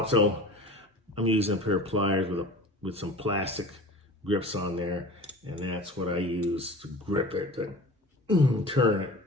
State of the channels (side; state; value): both; normal; correlation 0.38